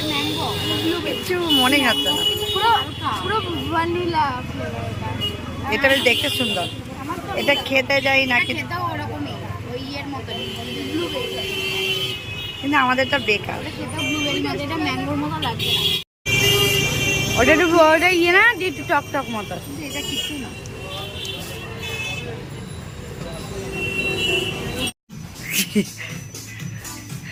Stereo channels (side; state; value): both; identical; correlation 1.00